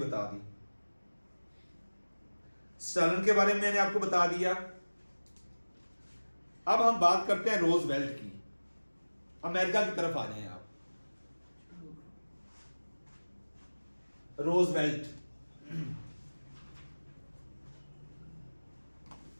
दी। स्टालिन के बारे में मैंने आपको बता दिया। अब हम बात करते हैं रोजवेल्ट की। अमेरिका की तरफ आ जाएं आप। रोजवेल्ट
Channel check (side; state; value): both; inverted; correlation -1.00